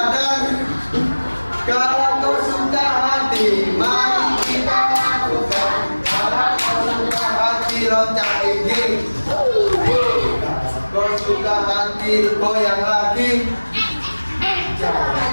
Kalau kau suka hati, mari kita lakukan. Kalau kau suka hati, loncat gigi. Kau suka hati, goyang lagi.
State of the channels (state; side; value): inverted; both; correlation -1.00